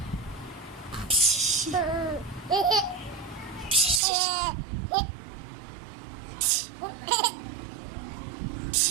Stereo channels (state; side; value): drops out; left; at 4.0 s